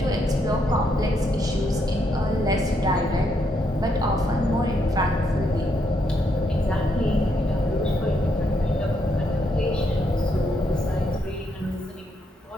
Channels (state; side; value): normal; both; correlation 0.76